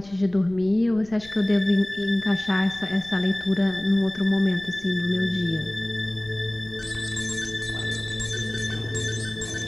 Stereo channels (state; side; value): noise; left; rumble, 21 dB below the sound